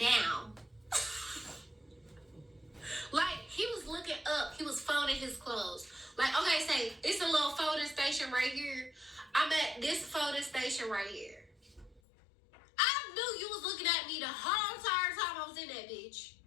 Like, he was looking up. He was folding his clothes. Like, okay, say, it's a little folding station right here. I'm at this folding station right here. I knew you was looking at me the whole entire time I was in that bitch.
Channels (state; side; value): drops out; right; at 12.0 s